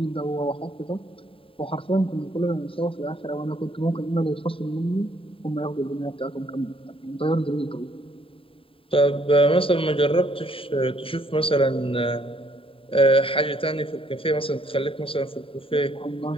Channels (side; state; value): right; late; 0.26 ms